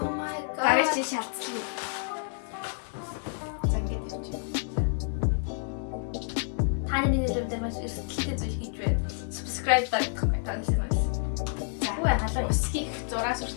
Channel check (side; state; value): right; silent; 59 dB below the other